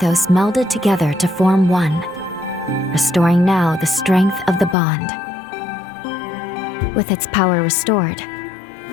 melded together to form one, restoring now the strength of the bond. With its power restored,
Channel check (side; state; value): right; drops out; at 4.8 s